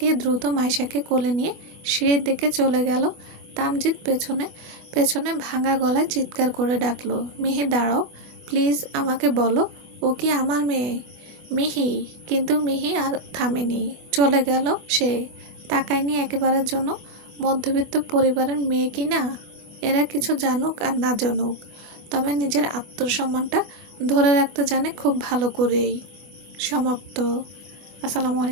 দ্রুত মাইশাকে কোলে নিয়ে সিঁড়ির দিকে চলে গেল। তামজিৎ পেছনে পেছনে ভাঙা গলায় চিৎকার করে ডাকলো, মিহি দাঁড়াও, প্লিজ আমাকে বলো, ও কি আমার মেয়ে? মিহি। কিন্তু মিহি আর থামেনি, চলে গেল সে। তাকায়নি একেবারের জন্য। মধ্যবিত্ত পরিবারের মেয়ে কি না? এরা কিছু জানুক আর না জানুক, তবে নিজের আত্মসম্মানটা ধরে রাখতে জানে খুব ভালো করেই। সমাপ্ত। আসসালামু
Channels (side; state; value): left; late; 25 ms